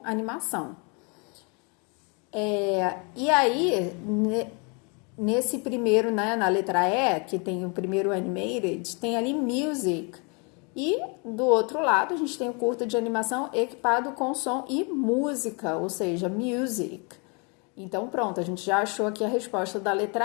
animação. E aí, nesse primeiro, né, na letra E, que tem o primeiro animated, tem ali music. E do outro lado, a gente tem o curta de animação equipado com som e música, ou seja, music. Então, pronto, a gente já achou aqui a resposta da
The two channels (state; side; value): quieter; right; 33.5 dB